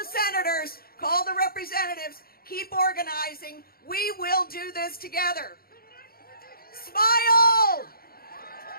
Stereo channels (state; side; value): late; right; 0.44 ms